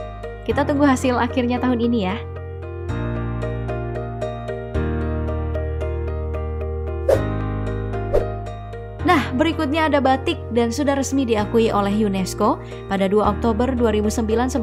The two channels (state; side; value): identical; both; correlation 1.00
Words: Kita tunggu hasil akhirnya tahun ini ya. Nah, berikutnya ada batik dan sudah resmi diakui oleh UNESCO pada 2 Oktober 2009